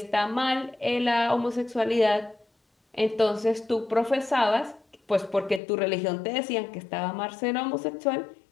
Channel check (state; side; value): drops out; right; at 5.6 s